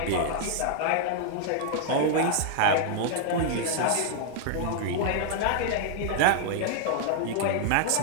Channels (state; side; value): different; both; correlation -0.01